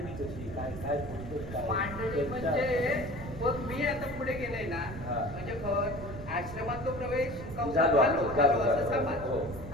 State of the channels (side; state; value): right; noise; rumble, 11 dB below the sound